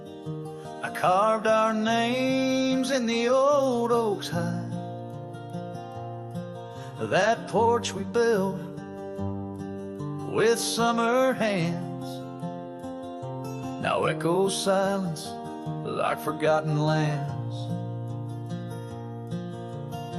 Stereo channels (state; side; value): identical; both; correlation 1.00